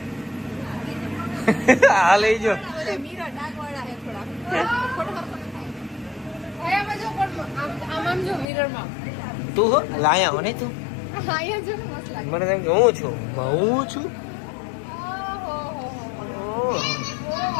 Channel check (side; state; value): right; drops out; at 8.5 s